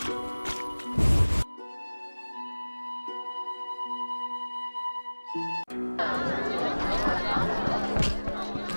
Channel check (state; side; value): inverted; both; correlation -1.00